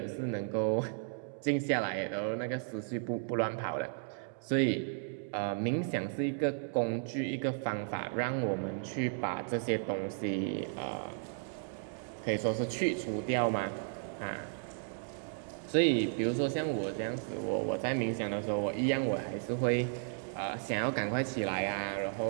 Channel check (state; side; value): silent; left; 55 dB below the other